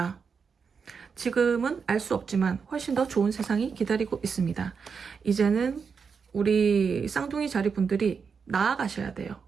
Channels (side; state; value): left; quieter; 5.8 dB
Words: 지금은 알 수 없지만 훨씬 더 좋은 세상이 기다리고 있습니다. 이제는 우리 쌍둥이 자리분들이 나아가셔야 돼요.